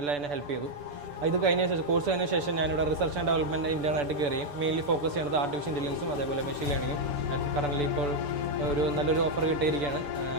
എന്നെ ഹെൽപ്പ് ചെയ്തു. ഇത് കഴിഞ്ഞ ശേഷം കോഴ്സ് കഴിഞ്ഞ ശേഷം ഞാനിവിടെ റിസർച്ച് ആൻഡ് ഡെവലപ്മെൻറ്റ് ഇൻ്റേണായിട്ട് കയറിയും മെയിൻലി ഫോക്കസ് ചെയ്യുന്നത് ആർട്ടിഫിഷ്യൽ ഇൻ്റലിജൻസും അതേപോലെ മെഷീൻ ലേണിങ്ങും. കറൻ്റ് ഇപ്പോൾ ഒരു നല്ലൊരു ഓഫർ കിട്ടിയിരിക്കുകയാണ്.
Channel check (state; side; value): late; left; 6.9 ms